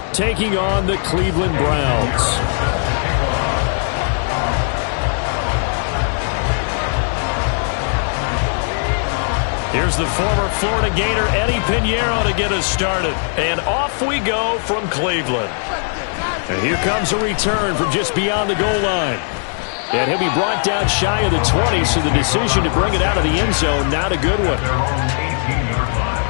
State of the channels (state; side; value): silent; right; digital silence